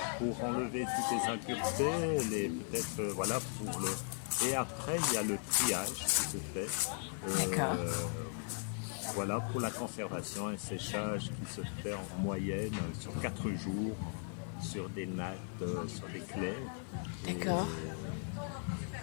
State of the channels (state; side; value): silent; right; 53 dB below the other